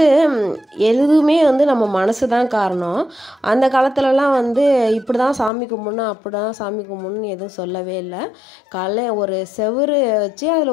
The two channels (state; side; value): drops out; right; at 5.5 s